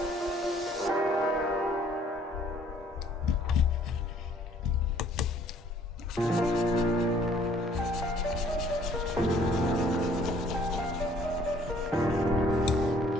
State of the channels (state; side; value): normal; both; correlation 0.58